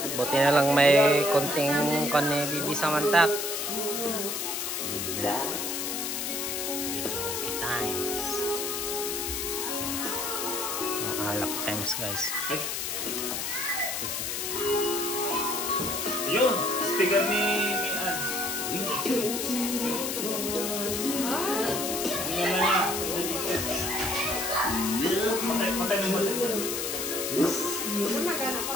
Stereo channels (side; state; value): left; noise; hiss, 2 dB below the sound